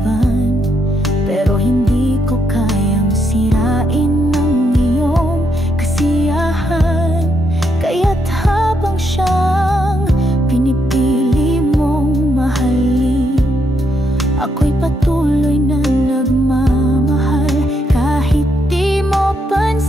pero hindi ko kayang sirain ang iyong kasiyahan. Kaya't habang siyang pinipili mong mahalin, ako'y patuloy na nagmamahal. Kahit di mo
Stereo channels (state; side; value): normal; both; correlation 0.77